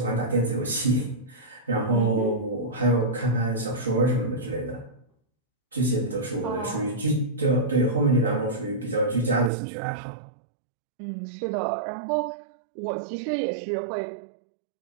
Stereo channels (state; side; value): drops out; left; at 9.5 s